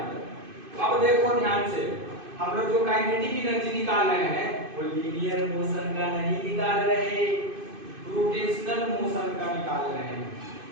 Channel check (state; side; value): late; left; 2.5 ms